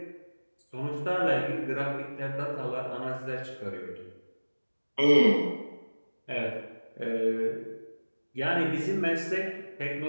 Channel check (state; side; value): inverted; both; correlation -1.00